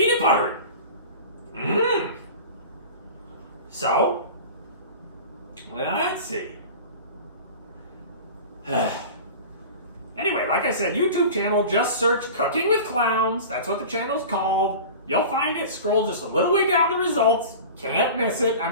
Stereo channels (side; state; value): both; inverted; correlation -0.36